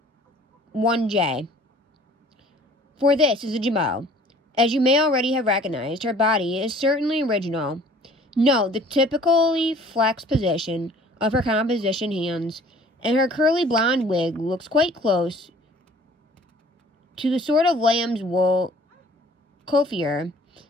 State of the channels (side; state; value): both; normal; correlation 0.52